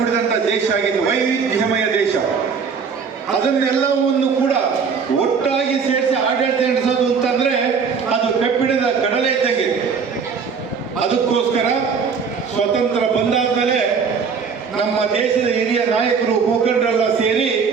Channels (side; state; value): left; quieter; 5.9 dB